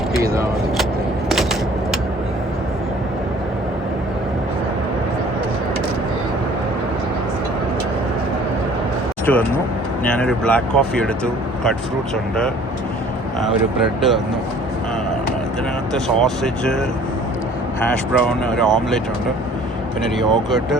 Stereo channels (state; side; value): normal; both; correlation 0.52